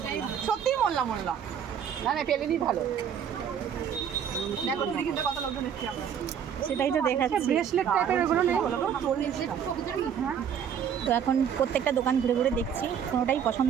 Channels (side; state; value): left; quieter; 8.3 dB